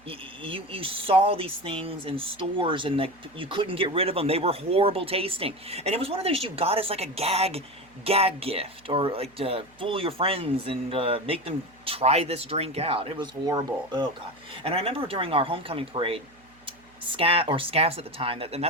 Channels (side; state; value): right; noise; hum, 29 dB below the sound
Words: You saw these things in stores and you couldn't get rid of them. They were horrible tasting. And it was one of those you got as like a gag gift, or like to fool your friends and make them try this drink out. It was horrible. Oh God. And I remember during our homecoming parade, Scaff's at the time, and